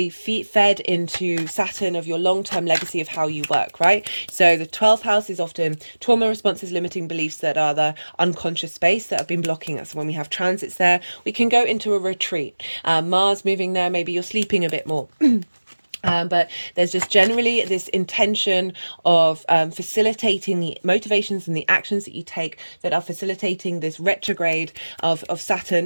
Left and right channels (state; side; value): inverted; both; correlation -1.00